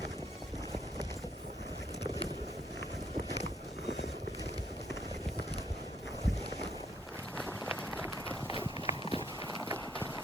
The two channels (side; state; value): both; normal; correlation 0.69